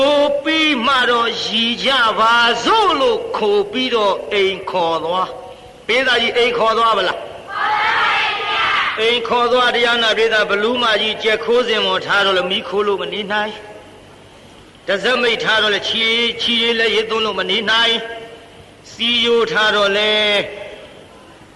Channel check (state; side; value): identical; both; correlation 1.00